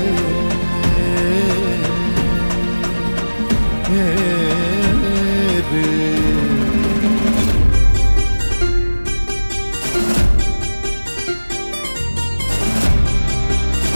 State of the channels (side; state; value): both; inverted; correlation -1.00